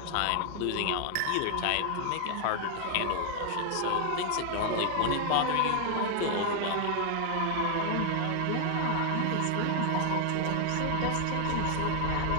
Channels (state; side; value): different; both; correlation 0.00